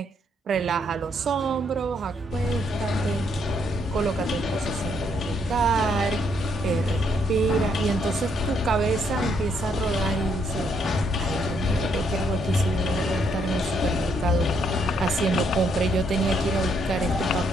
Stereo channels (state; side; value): normal; both; correlation 0.73